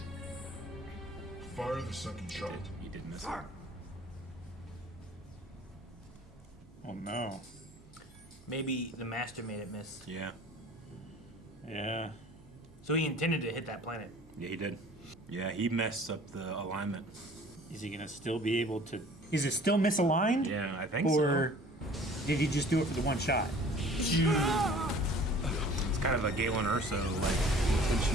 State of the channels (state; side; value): normal; both; correlation 0.49